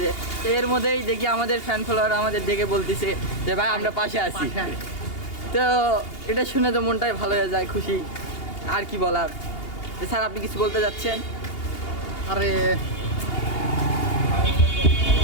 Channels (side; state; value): right; late; 2.8 ms